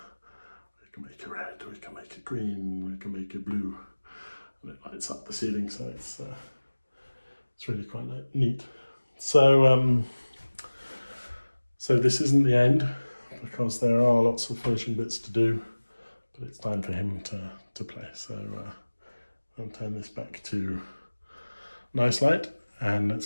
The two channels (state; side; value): inverted; both; correlation -1.00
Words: We can make it red, we can make it green, we can make it blue. And it lights up the ceiling, so it's really quite neat. So, so this isn't the end, because there are lots of finishing bits to do, but it's time for him to play. So I'll turn this back to nice light and let's